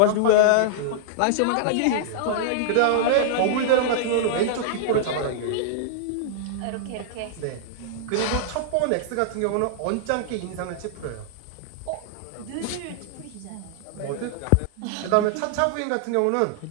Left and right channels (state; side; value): different; both; correlation -0.01